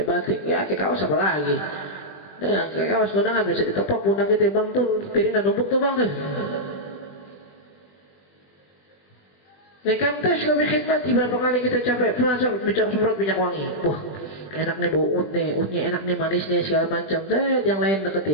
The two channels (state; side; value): late; right; 21 ms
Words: batik, ya kayak kaos apa lagi? Nah, kayak kaos kondangan bisa ditepok pundak kita, bang tuh piring dan numpuk tuh bang tuh. Ya kan tes kami khidmat, berapa kali kita capek, bicara semprot minyak wangi, wah enak nih bau utnya enak nih, manis nih segala macam, yang lain